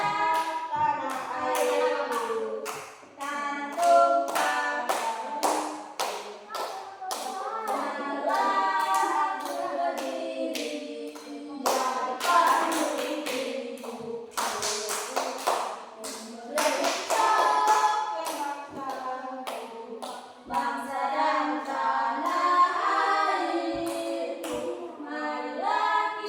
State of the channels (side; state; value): both; identical; correlation 1.00